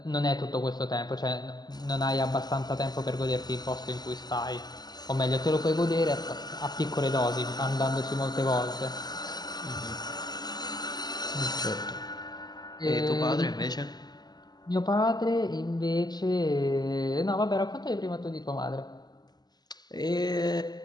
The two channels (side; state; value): right; late; 0.20 ms